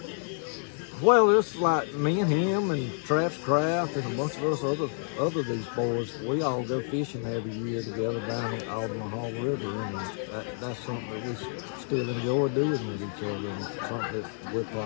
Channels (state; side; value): silent; right; 56 dB below the other